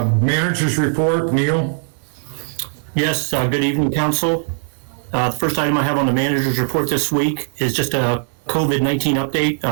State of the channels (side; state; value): left; silent; 56 dB below the other